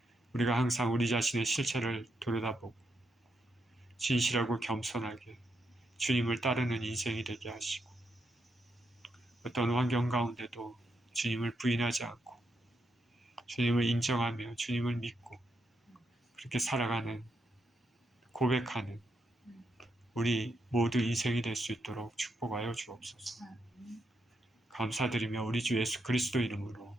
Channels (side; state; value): both; normal; correlation 0.81